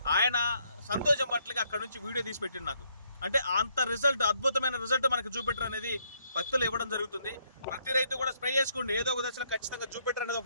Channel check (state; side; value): inverted; both; correlation -0.71